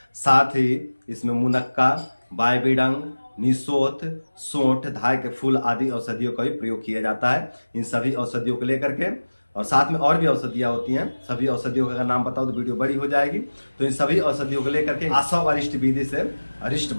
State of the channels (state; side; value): inverted; both; correlation -1.00